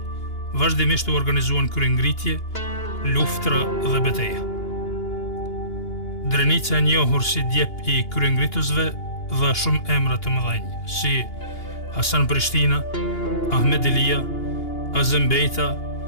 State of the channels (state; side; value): late; right; 2.8 ms